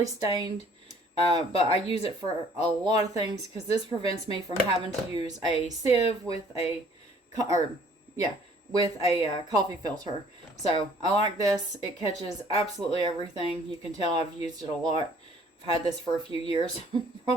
stained, but I use it for a lot of things because this prevents me from having to use a sieve with a coffee filter. So I like this. It catches absolutely everything. You can tell I've used it a lot. I've had this for a few years.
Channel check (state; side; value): normal; both; correlation 0.57